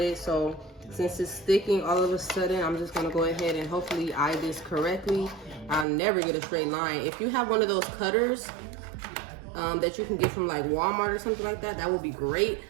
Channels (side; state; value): left; drops out; at 5.9 s